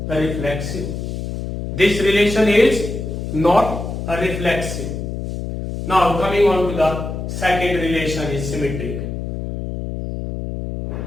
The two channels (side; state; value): left; noise; hum, 5 dB below the sound